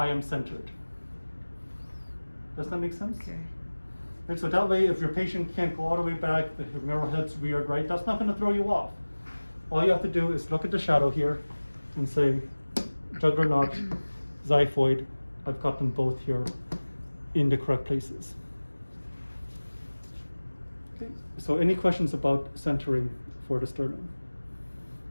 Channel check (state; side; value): inverted; both; correlation -1.00